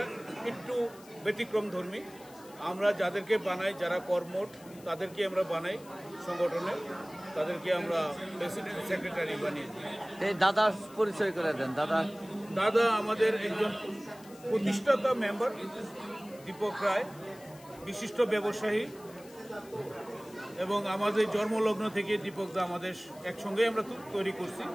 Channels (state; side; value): noise; left; hiss, 22 dB below the sound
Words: একটু ব্যতিক্রম ধর্মী। আমরা যাদেরকে বানাই, যারা কর্মঠ তাদেরকে আমরা বানাই সংগঠনে, তাদেরকে আমরা প্রেসিডেন্ট সেক্রেটারি বানিয়ে দিই। এই দাদার পরিচয় করে দেন। দাদা আমাদের একজন প্রতিষ্ঠাতা মেম্বার দীপক রায়, বিশিষ্ট ব্যবসায়ী, এবং আমাদের জন্মলগ্ন থেকে দীপক দা আমাদের একসঙ্গে আমরা তৈরি করছি,